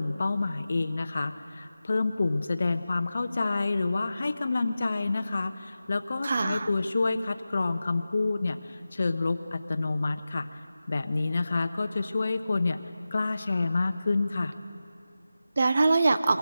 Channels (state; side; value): inverted; both; correlation -0.94